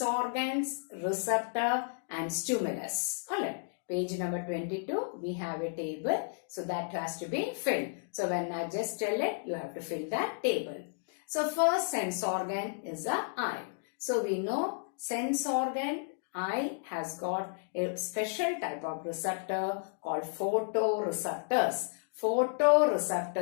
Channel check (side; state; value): right; silent; digital silence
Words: organs, receptor and stimulus. Alright. Page number 22, we have a table. So that has to be filled. So when I just tell it, you have to fill that table. So first sense organ is the eye. So we know sense organ, eye has got a special type of receptor called photoreceptors.